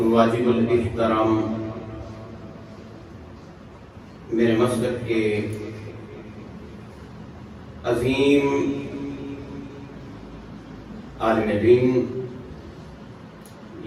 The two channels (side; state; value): both; identical; correlation 1.00